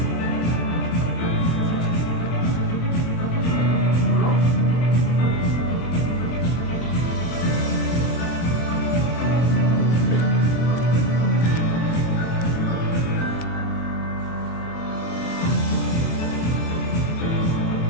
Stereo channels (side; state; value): right; late; 24 ms